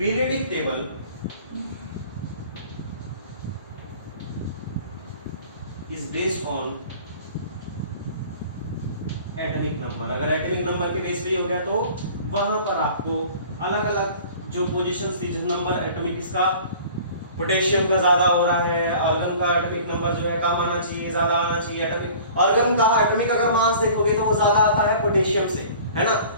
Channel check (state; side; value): inverted; both; correlation -0.46